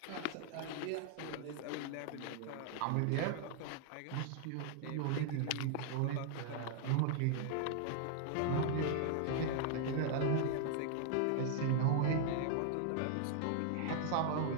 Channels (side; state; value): both; different; correlation -0.01